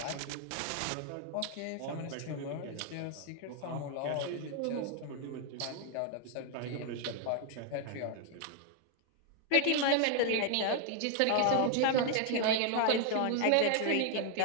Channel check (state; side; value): different; both; correlation 0.00